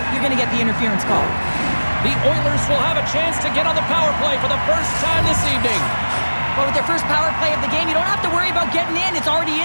you're gonna get the interference call. The Oilers will have a chance to get on the power play for the first time this evening. But with their first power play of the game, you don't have to worry about getting in. It's already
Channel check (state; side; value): inverted; both; correlation -1.00